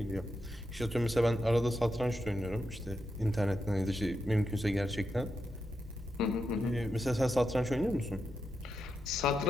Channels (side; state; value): both; normal; correlation 0.86